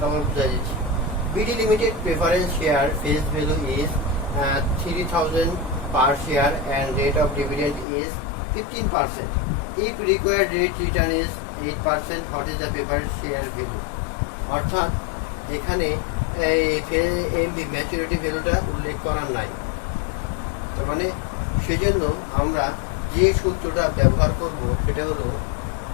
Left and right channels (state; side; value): drops out; right; at 7.9 s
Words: বুঝা যাচ্ছে। BD limited preference share face value is 3000 per share and rate of dividend is 15%. If required rate return is 8%, what is the preferred share value? অর্থাৎ এখানে এমভি ম্যাচুরিটি ভ্যালুটা উল্লেখ করার নাই, তার মানে সেজন্য আমরা যে সূত্রটা ব্যবহার করব সেটা হলো